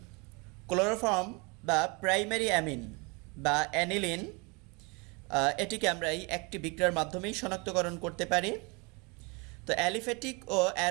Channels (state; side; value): quieter; left; 29.5 dB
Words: ক্লোরোফর্ম বা প্রাইমারি অ্যামিন বা অ্যানিলিন, এটিকে আমরা এই একটি বিক্রিয়ার মাধ্যমেই শনাক্তকরণ করতে পারি। তো অ্যালিফেটিক ও